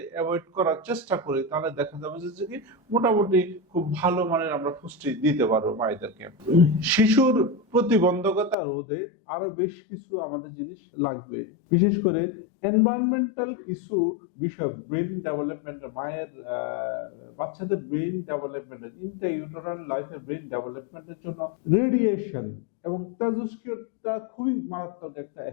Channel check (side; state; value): right; drops out; at 8.6 s